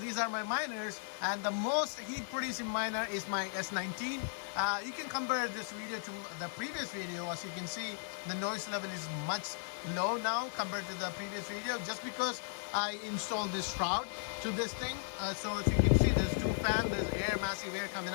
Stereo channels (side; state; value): right; silent; digital silence